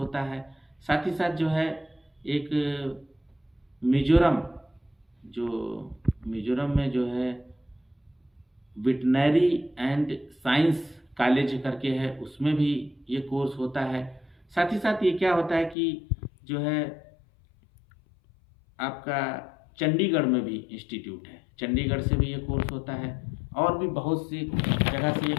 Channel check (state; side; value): drops out; right; at 15.8 s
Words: है। साथ ही साथ जो है एक मिजोरम में जो है वेटनरी एंड साइंस कॉलेज करके है, उसमें भी ये कोर्स होता है। साथ ही साथ ये क्या होता है कि जो है आपका चंडीगढ़ में भी इंस्टीट्यूट है, चंडीगढ़ से भी ये कोर्स होता है। और भी बहुत सी जगह से ये